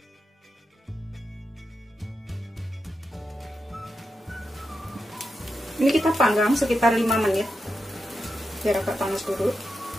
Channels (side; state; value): both; normal; correlation 0.88